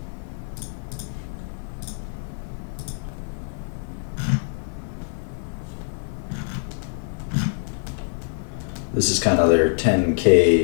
This is kind of their 10K,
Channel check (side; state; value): right; silent; 59 dB below the other